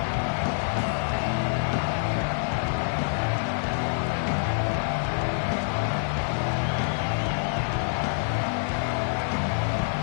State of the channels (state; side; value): silent; right; digital silence